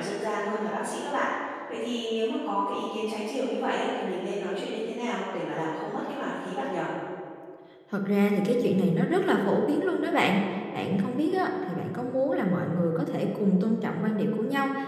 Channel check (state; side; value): identical; both; correlation 1.00